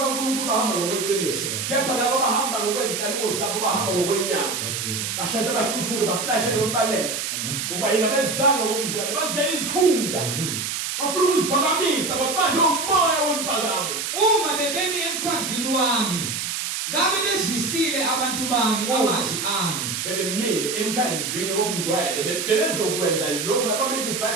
bahamba ngokweqiniso. Kepha labo abahamba ngokwezinkanuko zabo bahamba ngokwenyama. Bashasha bahluthuke baflashe lokubaleka. Ngoba yena bezanga ngokungcwele bazela izikhundla. Bafuna ukuziphakamisa babanje umoya wemphakamo. Uma bebemi emkhandlwini wami, ngabe bezwisile abantu bami amazwi ami. Bebemile emkhandlwini wokungcwele bebezokwenza lokho ababethi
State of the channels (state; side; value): noise; right; hiss, 3 dB below the sound